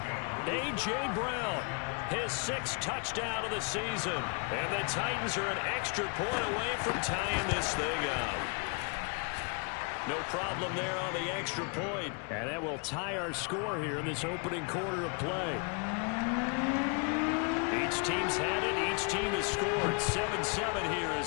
A.J. Brown, his 6th touchdown of the season. And the Titans are an extra point away from tying this thing up. No problem there on the extra point. And that will tie our score here in this opening quarter of play. Each team's had it. Each team has scored. 7-7 here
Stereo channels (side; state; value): right; quieter; 36.2 dB